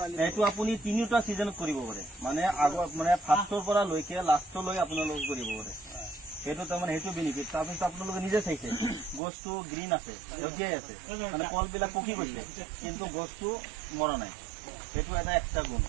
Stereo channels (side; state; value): left; drops out; at 9.2 s